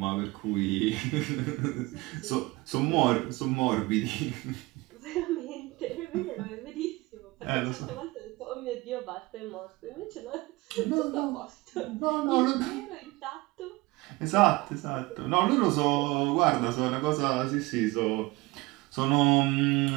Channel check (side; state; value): left; quieter; 21.7 dB